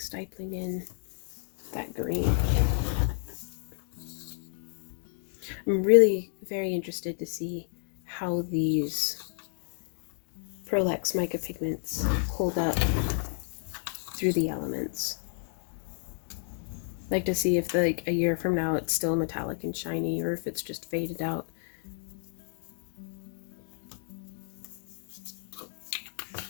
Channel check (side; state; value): right; silent; 57 dB below the other